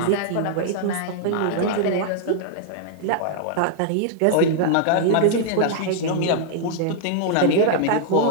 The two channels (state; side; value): different; both; correlation -0.01